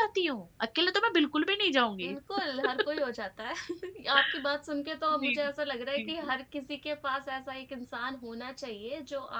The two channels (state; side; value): identical; both; correlation 1.00